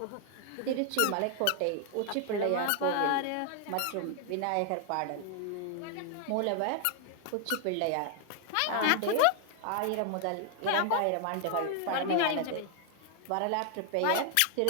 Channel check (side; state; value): both; different; correlation 0.00